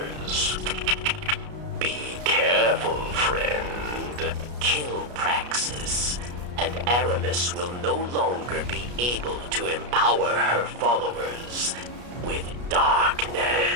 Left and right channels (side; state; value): left; late; 33 ms